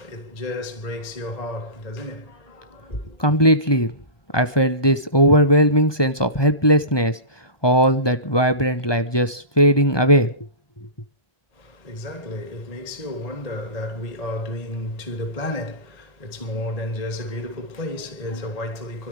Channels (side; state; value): right; late; 1.2 ms